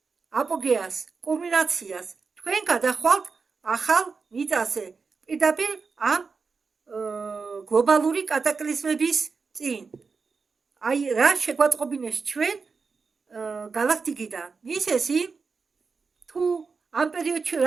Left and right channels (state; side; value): quieter; left; 4.8 dB